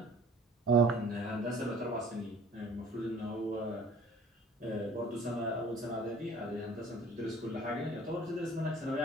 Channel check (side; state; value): both; normal; correlation 0.51